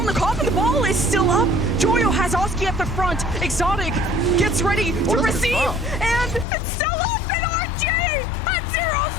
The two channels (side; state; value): right; drops out; at 6.5 s